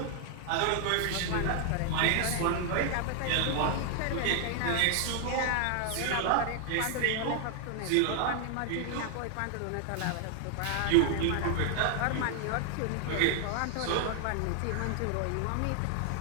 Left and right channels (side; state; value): both; different; correlation 0.00